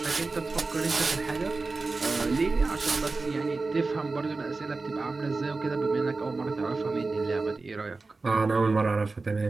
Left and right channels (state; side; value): quieter; left; 3.7 dB